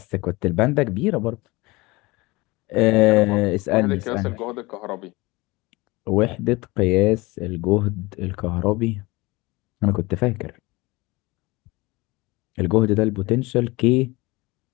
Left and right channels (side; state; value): right; quieter; 22.7 dB